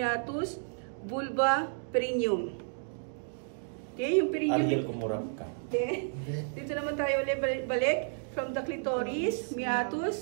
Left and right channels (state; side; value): silent; left; digital silence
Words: vulva, perineum. Okay, yung perineum. Ariel, kumurap ka. Okay. Dito naman tayo ulit balik. From the clitoris,